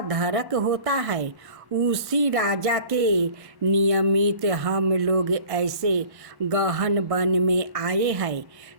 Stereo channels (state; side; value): late; left; 1.1 ms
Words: होता है। उसी राजा के नियमित हम लोग ऐसे गहन वन में आए हैं।